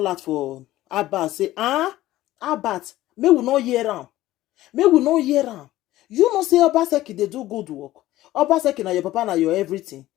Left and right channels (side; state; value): right; quieter; 15.6 dB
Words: out for Abat. Say, Abat, may we not hear am. You know say Obaseki they do good work. Obaseki na your papa na your everything.